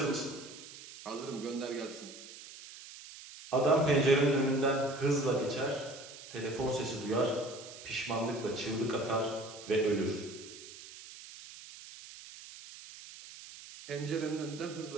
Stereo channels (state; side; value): noise; right; hiss, 15 dB below the sound